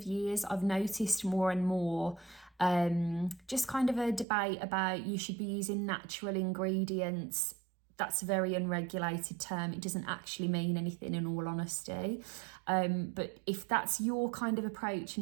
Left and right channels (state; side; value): drops out; left; at 4.2 s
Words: years, I've noticed more and more just kind of a debate about you should be using natural ingredients. That's a very unregulated term. It doesn't actually mean anything, in all honesty. But if that's your kind of approach